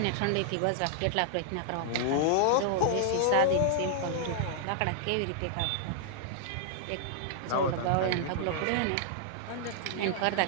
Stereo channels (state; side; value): different; both; correlation -0.01